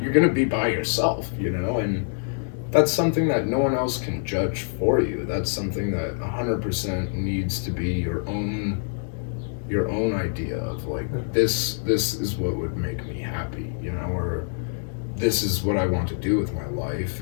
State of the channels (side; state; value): right; silent; 62 dB below the other